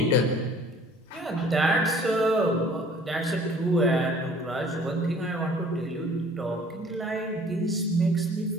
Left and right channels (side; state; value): both; normal; correlation 0.53